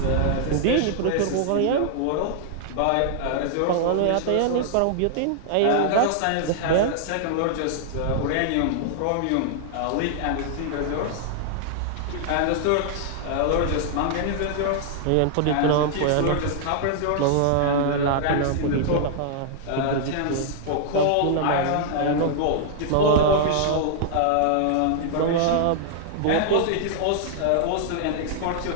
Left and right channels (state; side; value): different; both; correlation -0.01